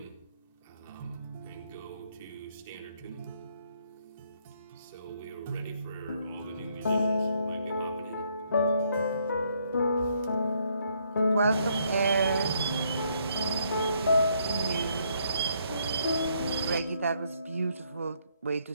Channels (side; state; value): both; inverted; correlation -0.71